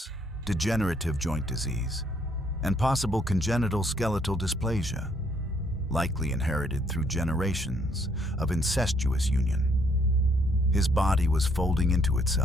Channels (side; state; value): both; normal; correlation 0.68